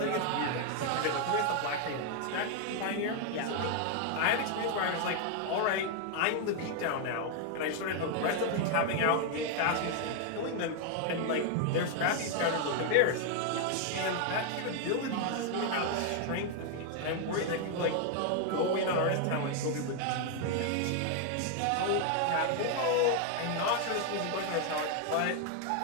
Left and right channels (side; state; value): both; different; correlation 0.00